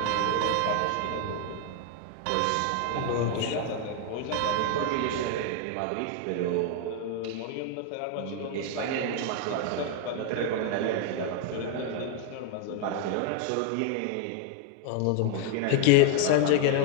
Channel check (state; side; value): different; both; correlation 0.00